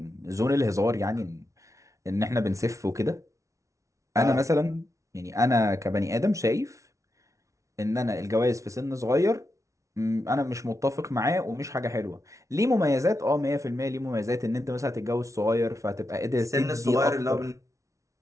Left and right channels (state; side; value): late; left; 0.15 ms